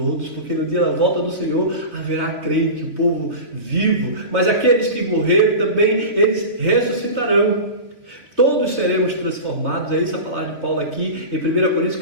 porque no dia da volta do Senhor haverá crente, o povo vivo, mas aqueles que morreram também, eles ressuscitarão. Todos seremos transformados. É isso a palavra de Paulo aqui em 1 Coríntios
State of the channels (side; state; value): left; late; 3.3 ms